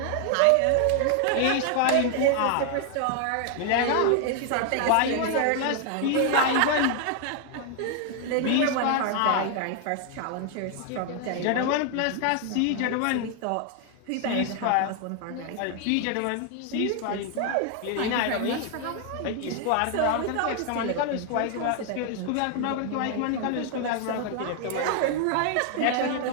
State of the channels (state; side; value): different; both; correlation 0.00